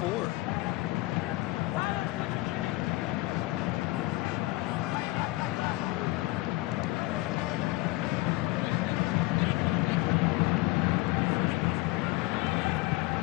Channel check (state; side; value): quieter; right; 20.5 dB